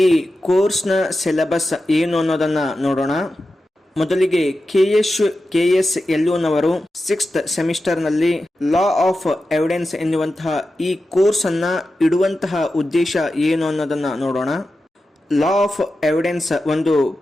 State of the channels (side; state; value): both; normal; correlation 0.92